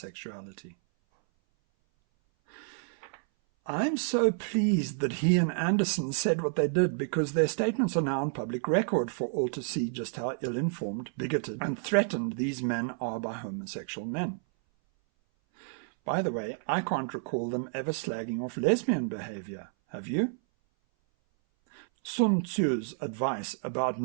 I'm so pleased that he and Anderson said what they did, because their statements are now on public record for all to see just how ill-informed, bigoted, and threatened these men are by homosexual men. By the way, I can't recall them ever slagging off lesbian behavior. Have you? Sun Tzu's advice about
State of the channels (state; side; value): silent; left; 58 dB below the other